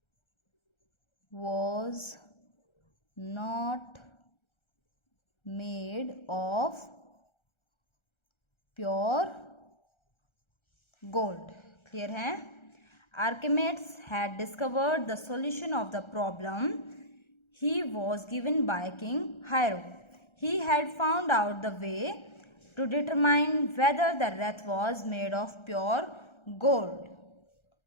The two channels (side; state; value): right; late; 1.3 ms